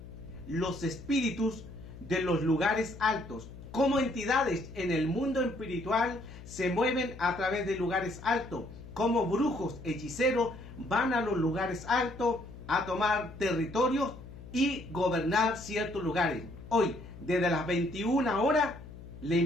los espíritus de los lugares altos. Cómo entidades en el mundo espiritual se mueven a través de lugares altos. Cómo brujos, hechiceros van a los lugares altos a tomar territorios y gobernar ciertos lugares. Hoy, desde las 21 horas, le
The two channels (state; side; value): noise; left; hum, 15 dB below the sound